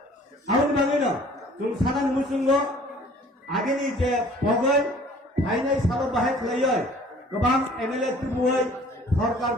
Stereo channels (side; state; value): both; normal; correlation 0.52